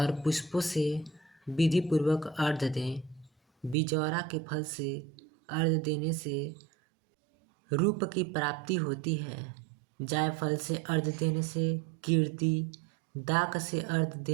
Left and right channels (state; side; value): drops out; left; at 3.8 s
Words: पुष्पों से विधि पूर्वक अर्घ्य दें। बिजौरा के फल से अर्घ्य देने से रूप की प्राप्ति होती है। जायफल से अर्घ्य देने से कीर्ति, दाक से अर्घ्य